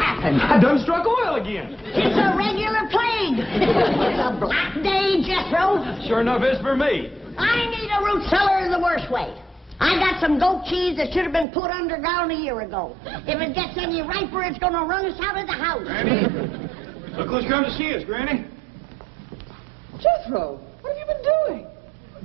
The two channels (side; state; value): left; drops out; at 11.5 s